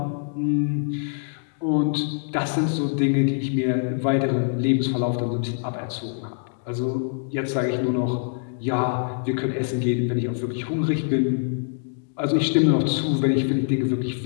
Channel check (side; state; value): right; silent; digital silence